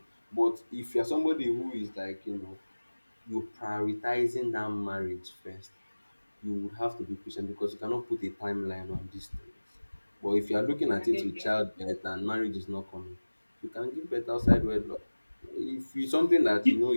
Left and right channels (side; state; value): both; inverted; correlation -1.00